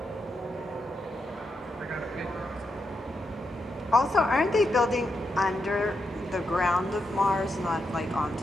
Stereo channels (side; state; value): both; normal; correlation 0.84